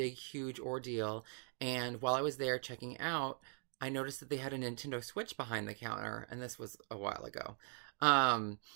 huge ordeal. And while I was there checking out, I noticed that they had a Nintendo Switch behind the counter, and this was a while ago. Um,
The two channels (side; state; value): left; silent; 50 dB below the other